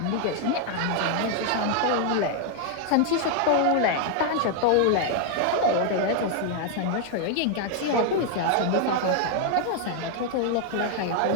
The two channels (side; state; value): both; different; correlation 0.00